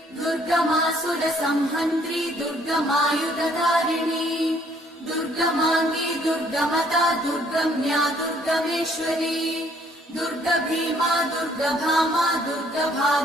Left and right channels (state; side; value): normal; both; correlation 0.63